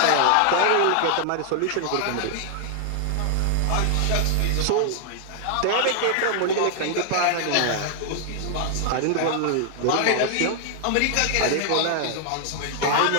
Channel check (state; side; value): different; both; correlation 0.00